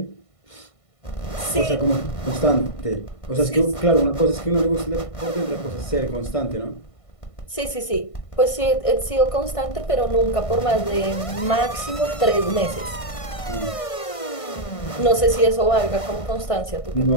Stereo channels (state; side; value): late; right; 1.5 ms